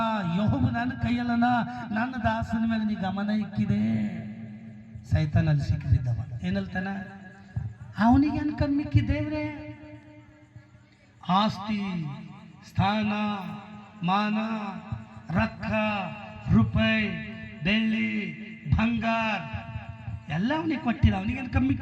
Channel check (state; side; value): identical; both; correlation 1.00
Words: ಯೆಹೋವ ನನ್ನ ಕೈಯಲ್ಲನ. ನನ್ನ ದಾಸನ ಮೇಲೆ ನೀ ಗಮನ ಇಕ್ಕಿದೆ. ಸೈತಾನಲ್ಲಿ ಸಿಕ್ಕಿದ್ದವ ಏನಲ್ತಾನ? ಅವನಿಗೆ ಅನ್ಕಂಡ್ ಮಿಕ್ಕಿ ದೇವ್ರೆ ಆಸ್ತಿ, ಸ್ಥಾನ, ಮಾನ, ರೊಕ್ಕ, ರೂಪಾಯಿ, ಬೆಳ್ಳಿ, ಬಂಗಾರ ಎಲ್ಲ ಅವನಿಗೆ ಕೊಟ್ಟಿದ. ಅವನಿಗೆ